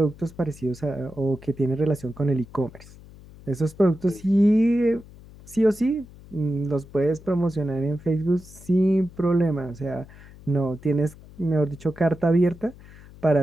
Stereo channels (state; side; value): noise; left; hum, 20 dB below the sound